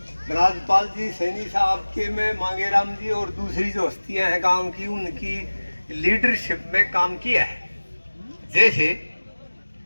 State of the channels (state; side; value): inverted; both; correlation -1.00